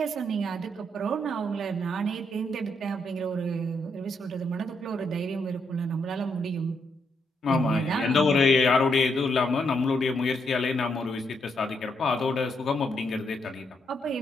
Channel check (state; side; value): normal; both; correlation 0.77